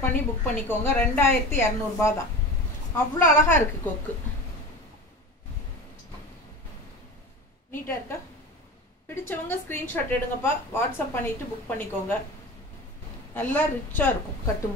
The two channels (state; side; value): normal; both; correlation 0.32